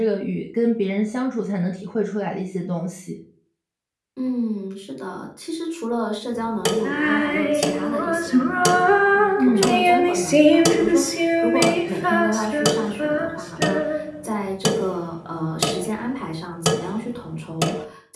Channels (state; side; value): identical; both; correlation 1.00